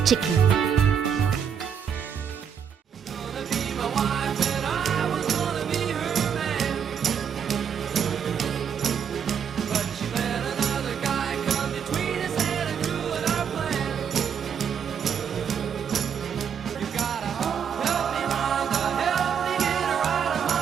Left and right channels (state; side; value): quieter; left; 7.6 dB